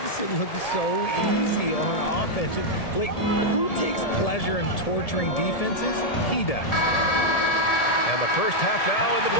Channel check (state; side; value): late; right; 1.7 ms